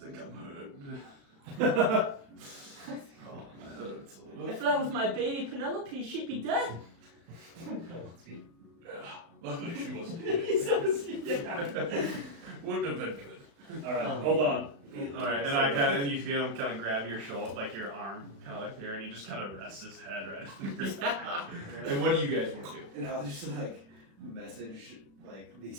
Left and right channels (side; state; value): left; late; 36 ms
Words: I'm hurt. Oh, my head hurts a little. If that was my baby Penelope, she'd be dead. Yeah, luckily she wasn't here. Yeah. Wouldn't have been good. All right, hold on. All right, and you feel him kind of grab your shoulder, like your arm, kind of like here, and he just kind of rests his head right on your back. And what do you guys want to do? And I'll just like message like